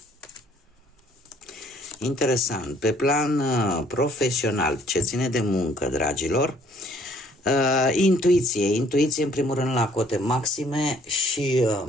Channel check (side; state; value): both; normal; correlation 0.61